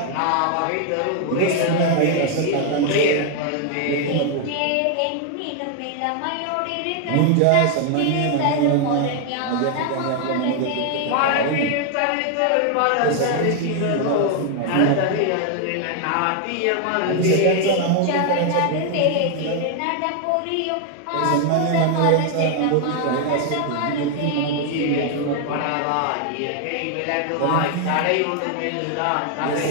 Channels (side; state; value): both; different; correlation 0.00